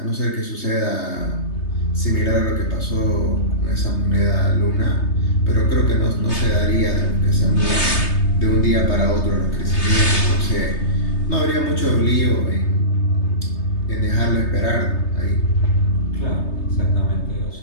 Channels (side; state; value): right; late; 3.3 ms